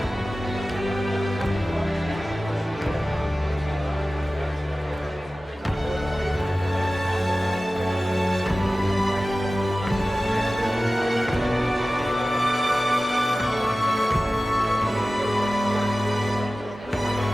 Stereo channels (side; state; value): both; normal; correlation 0.96